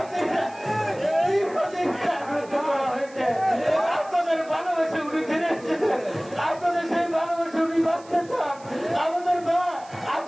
করা হয়েছে। আপনাদের ভালোবাসে উনি ফিরে এসেছেন, আপনাদের সেই ভালোবাসে উনি বাঁচতে চান। আমাদের মা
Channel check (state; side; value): noise; right; hiss, 24 dB below the sound